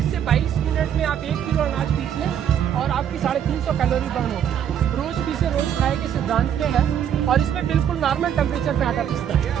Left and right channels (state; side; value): quieter; left; 9.3 dB